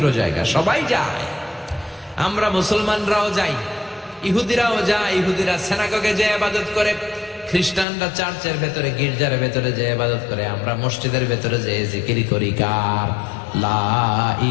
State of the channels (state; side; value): drops out; right; at 7.9 s